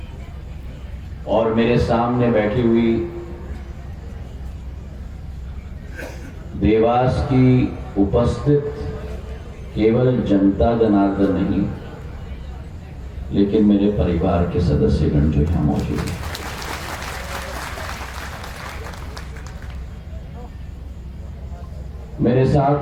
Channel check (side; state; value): both; identical; correlation 1.00